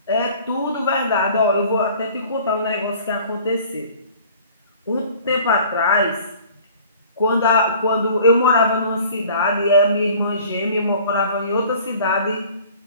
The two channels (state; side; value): inverted; both; correlation -0.49